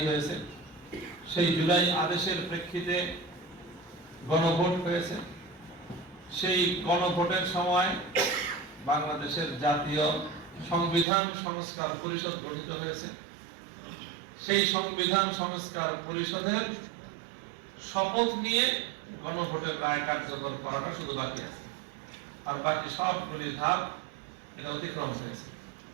হয়েছে, সেই জুলাই আদেশের প্রেক্ষিতে গণভোট হয়েছে। সেই গণভোটের সময় বাংলাদেশের জাতীয় সংবিধান সংস্কার পরিষদ গঠিত হয়েছে। সেই সংবিধান সংস্কার পরিষদের শপথ নিয়ে গণভোটের রায় কার্যকর করাটা শুধু বাকি আছে, আর বাকি সবগুলি ধাপ এটা অতিক্রম হয়েছে।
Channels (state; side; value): drops out; left; at 11.1 s